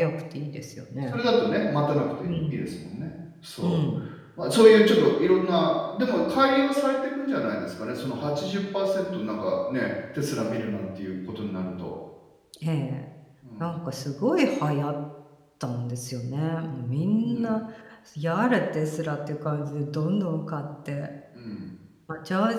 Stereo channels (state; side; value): identical; both; correlation 1.00